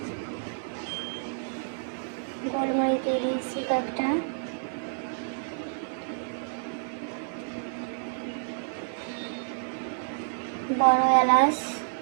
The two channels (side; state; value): left; silent; 58 dB below the other